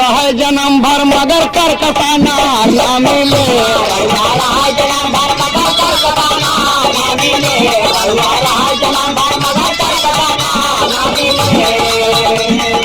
जन्म भर मगर कर कसाना ना मिले।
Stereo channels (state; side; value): identical; both; correlation 1.00